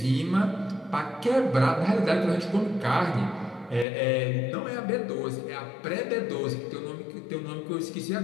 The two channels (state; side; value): drops out; right; at 3.9 s